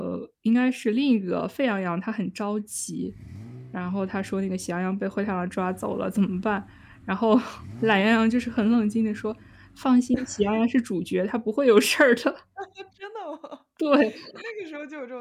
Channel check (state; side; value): identical; both; correlation 1.00